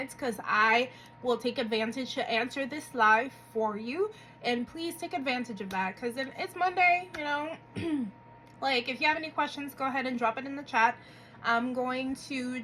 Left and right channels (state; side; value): identical; both; correlation 1.00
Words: because I will take advantage to answer this live for you. And please take advantage of that, because it's Monday, you know. Like, if you have any questions, go ahead and drop it in the chat. I'm going to